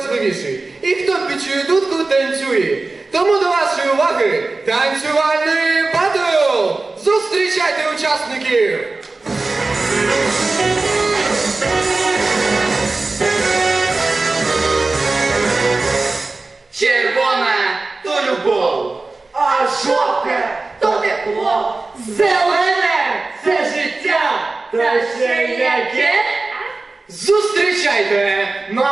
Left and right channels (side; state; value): left; quieter; 3.5 dB